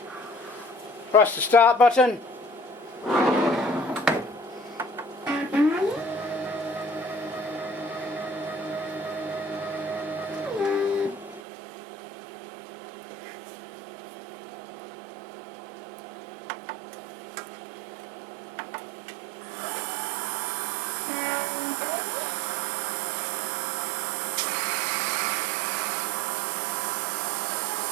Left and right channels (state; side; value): drops out; left; at 11.4 s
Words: press the start button,